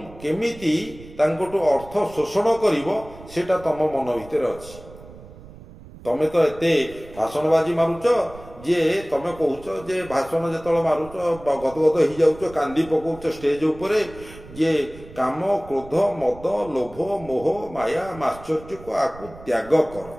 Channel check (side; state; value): right; noise; rumble, 18 dB below the sound